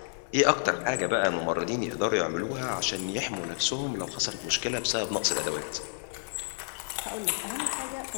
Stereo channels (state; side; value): silent; right; digital silence